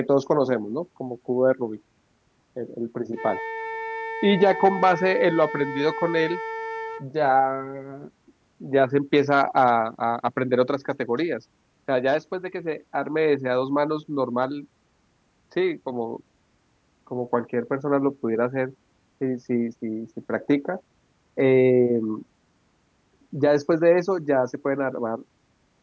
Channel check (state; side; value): identical; both; correlation 1.00